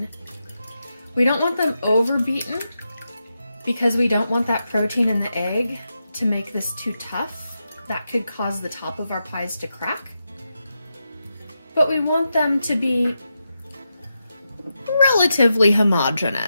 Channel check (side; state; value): both; inverted; correlation -0.87